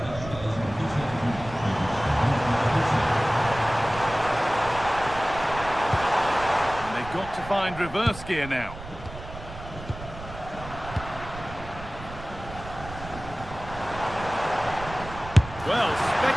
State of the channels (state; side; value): noise; right; rumble, 13 dB below the sound